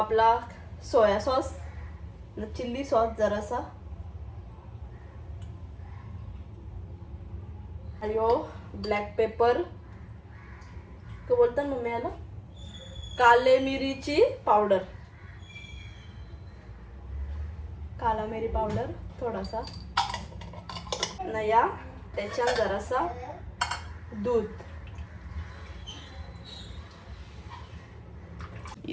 सोया सॉस ना चिल्ली सॉस जरासा यो ब्लॅक पेपर तो बोलतात मम्मी याला काले मिरीची पावडर काला मिरी पावडर थोडासा नया त्याच्यात जरासा दूध.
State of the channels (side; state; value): both; identical; correlation 1.00